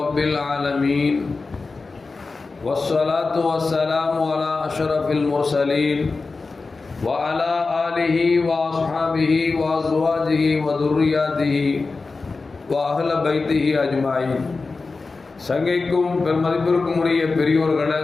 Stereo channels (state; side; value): quieter; right; 4.0 dB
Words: العالمين والصلاة والسلام على أشرف المرسلين وعلى آله وأصحابه وأزواجه وذرياته وأهل بيته أجمعين. சங்கைக்கும் பெருமதிப்பிற்கும் உரிய பெரியோர்களே,